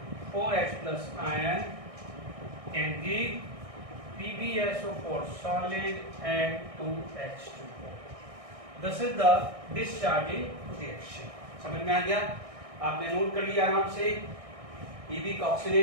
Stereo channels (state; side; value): late; left; 1.6 ms